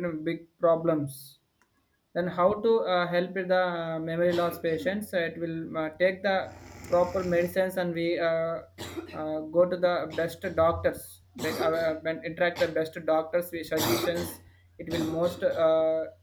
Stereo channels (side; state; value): both; identical; correlation 1.00